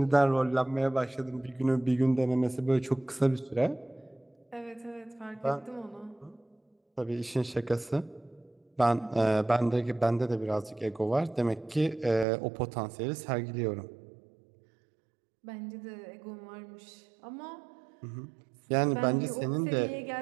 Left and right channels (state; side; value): drops out; left; at 12.2 s